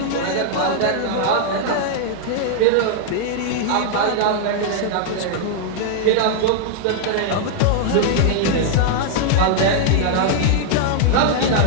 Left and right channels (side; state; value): both; different; correlation -0.01